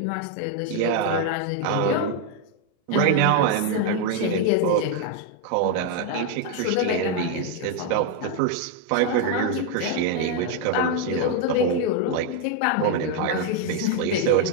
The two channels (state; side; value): different; both; correlation 0.01